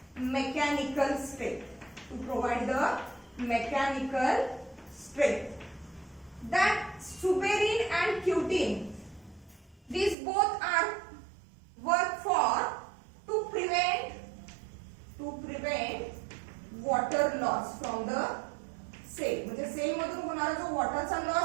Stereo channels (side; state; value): left; drops out; at 10.2 s